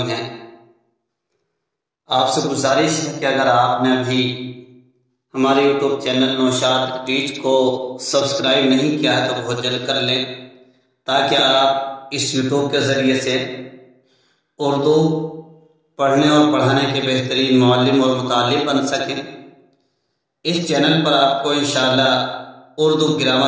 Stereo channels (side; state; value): both; identical; correlation 1.00